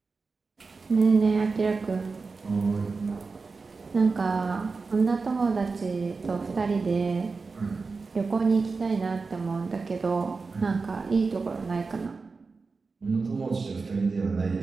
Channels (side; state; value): left; quieter; 4.3 dB